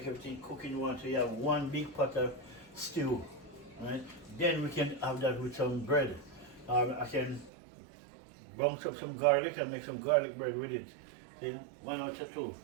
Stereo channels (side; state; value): left; drops out; at 7.5 s